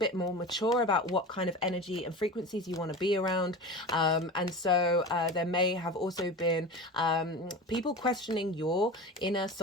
more mature about what kind of energy and frequencies you want to be around. And so there may have also been people questioning your inner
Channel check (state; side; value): normal; both; correlation 0.31